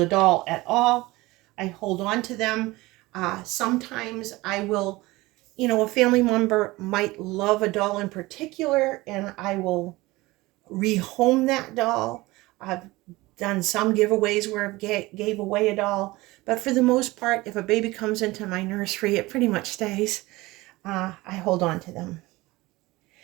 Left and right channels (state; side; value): quieter; left; 20.5 dB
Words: doll at all. I hold on to them. Sometimes I will, a family member might love a doll in particular, and I will rehome that doll. I've done some giveaways where I gave away a doll, but for the most part, if a baby comes into my nursery, it pretty much stays. I hold on to them.